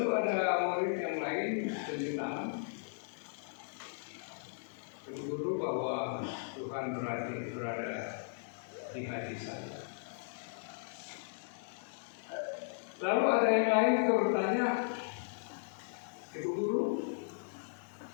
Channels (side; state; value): right; silent; digital silence